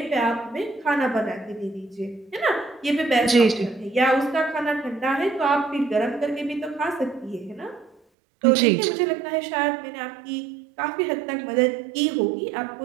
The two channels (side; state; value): left; drops out; at 8.0 s